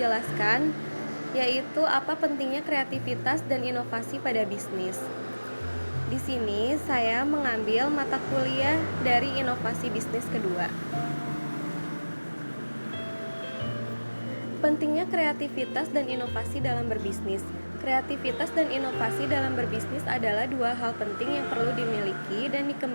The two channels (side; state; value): both; inverted; correlation -1.00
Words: yaitu apa pentingnya kreativitas dan inovasi pada bisnis. Di sini saya mengambil mata kuliah dari inovasi bisnis kedua. Pentingnya kreativitas dan inovasi dalam berbisnis. Kreativitas dan inovasi dalam berbisnis adalah dua hal penting yang perlu dimiliki dan